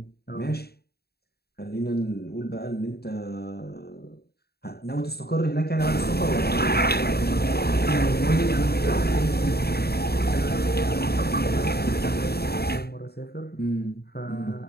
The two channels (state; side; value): late; right; 0.46 ms